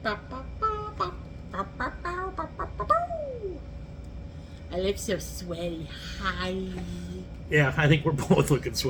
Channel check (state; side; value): identical; both; correlation 1.00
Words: I look so sweaty. Hi. Yeah, I think we're both looking